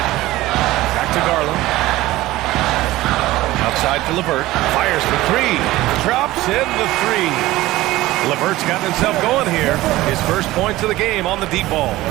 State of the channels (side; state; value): left; quieter; 17.3 dB